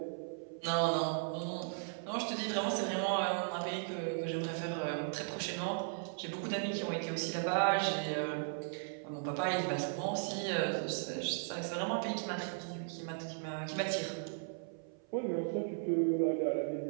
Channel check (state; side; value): silent; left; 53 dB below the other